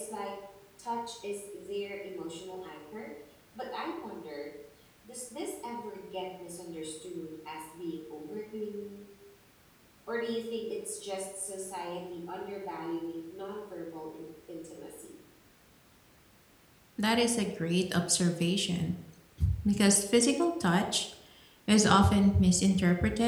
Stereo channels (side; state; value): both; identical; correlation 1.00